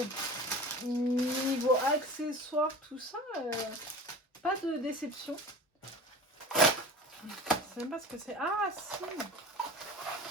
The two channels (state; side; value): normal; both; correlation 0.36